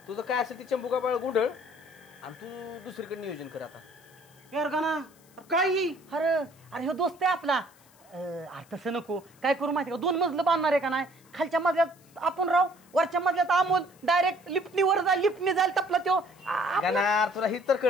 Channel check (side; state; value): left; noise; hiss, 28 dB below the sound